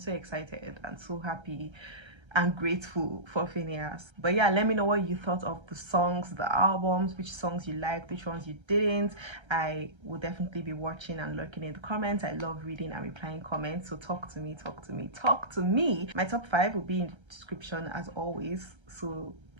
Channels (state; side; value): late; left; 1.3 ms